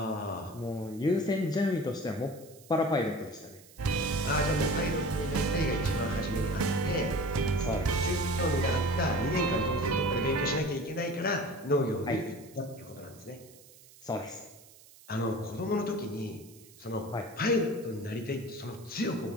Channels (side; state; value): right; noise; hiss, 23 dB below the sound